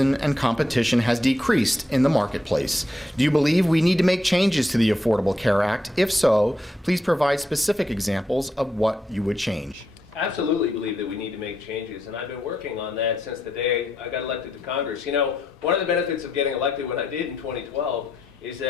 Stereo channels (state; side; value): normal; both; correlation 0.81